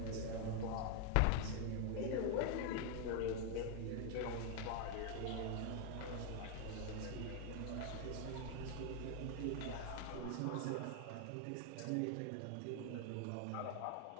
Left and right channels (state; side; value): different; both; correlation 0.01